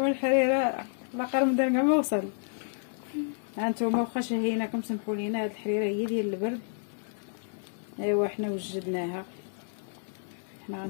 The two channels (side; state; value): right; silent; 58 dB below the other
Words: الحريره لاقر من كاع ما وصل. هانتوما واخا شهيناكم سمحوا لينا. هاد الحريره هي ديال البرد. ايوا حنا وجدناها. حنا